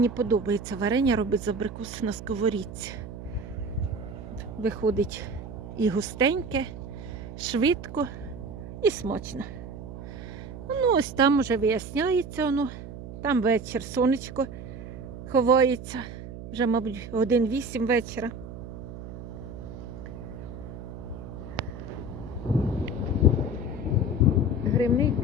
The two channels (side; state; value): right; noise; hum, 11 dB below the sound